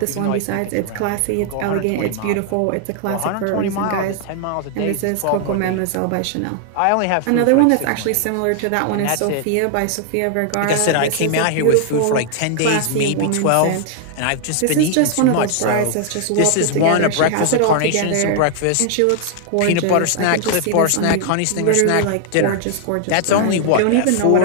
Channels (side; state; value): both; different; correlation 0.00